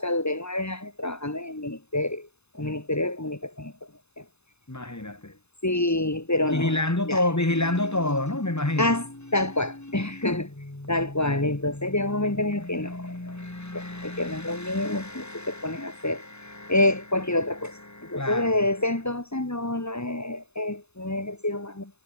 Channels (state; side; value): late; right; 0.80 ms